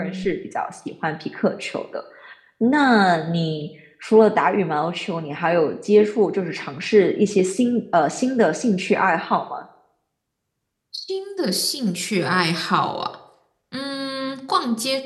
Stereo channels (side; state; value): both; identical; correlation 1.00